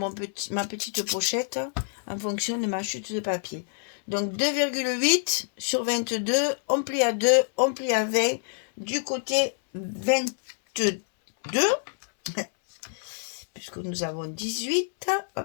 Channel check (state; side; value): silent; right; 60 dB below the other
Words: petite pochette en fonction de ma chute de papier. Donc 2,8 sur 22, on plie à 2, on plie à 20. Du côté 22, puisque nous avons 18,